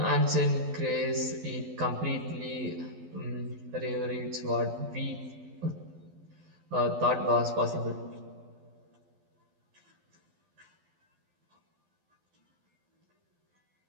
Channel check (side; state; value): left; late; 12 ms